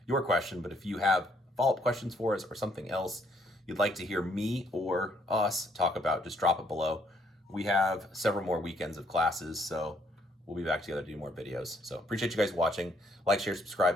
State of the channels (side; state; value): both; normal; correlation 0.68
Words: your question. But if you have follow-up questions for us or something else you'd like to hear me or us talk about, just drop it below. We have several more weekends of classes, so we'll be back together to do more videos. So appreciate you guys watching. Like, share,